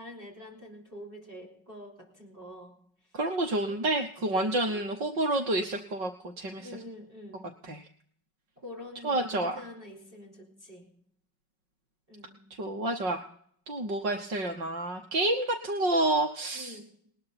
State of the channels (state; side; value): late; left; 5.4 ms